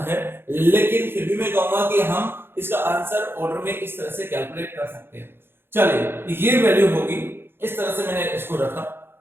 है, लेकिन फिर भी मैं कहूंगा कि हम इसका आंसर ऑर्डर में इस तरह से कैलकुलेट कर सकते हैं। चलिए, ये वैल्यू होगी, इस तरह से मैंने इसको रखा।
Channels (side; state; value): left; late; 0.11 ms